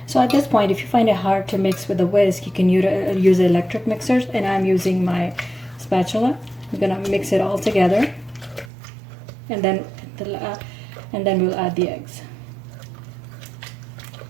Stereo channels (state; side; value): drops out; left; at 8.7 s